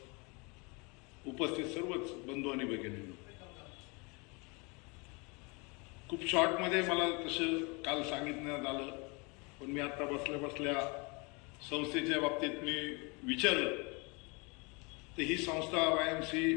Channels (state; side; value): quieter; right; 29.8 dB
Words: उपस्थित सर्वच बंधू आणि भगिनींनो, खूप शॉर्टमध्ये मला तसं काल सांगितण्यात आलं, पण मी आता बसल्या बसल्या संस्थेच्या बाबतीत मी विचारलं तर ही संस्था